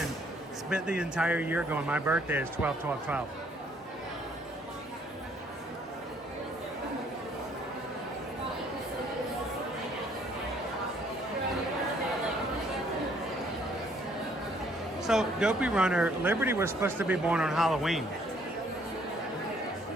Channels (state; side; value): normal; both; correlation 0.64